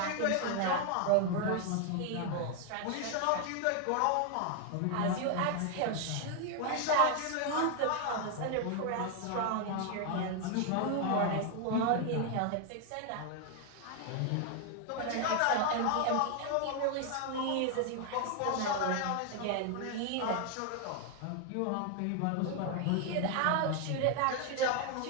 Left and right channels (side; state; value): both; different; correlation 0.00